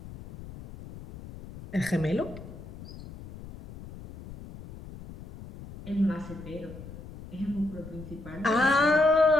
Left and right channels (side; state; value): left; noise; rumble, 15 dB below the sound